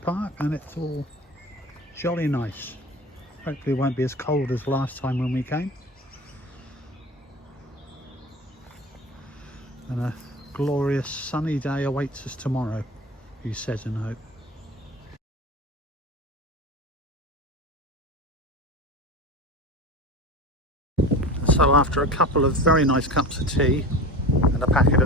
and it's all jolly nice. Hopefully it won't be as cold as last time when we came. And a glorious sunny day awaits us tomorrow, he says in hope. So after a couple of very nice cups of tea and a packet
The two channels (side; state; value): both; normal; correlation 0.32